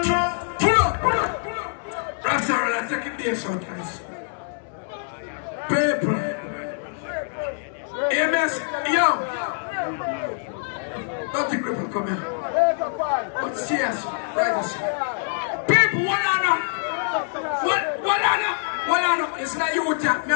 of pull up. That's all right, I take it there sometimes. People, AMS, yo, don't think people come here. But serious, right? People, what on no? It's not you,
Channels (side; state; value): right; silent; 62 dB below the other